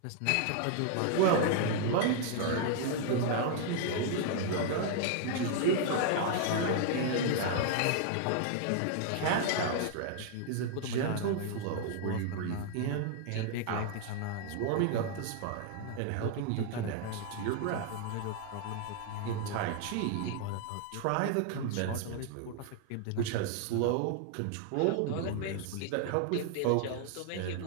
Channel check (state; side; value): different; both; correlation 0.00